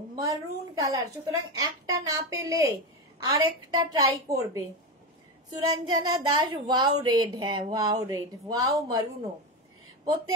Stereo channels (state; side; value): normal; both; correlation 0.16